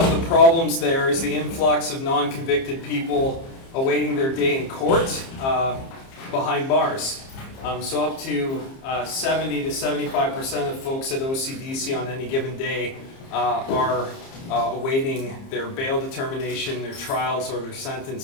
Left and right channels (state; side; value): late; right; 30 ms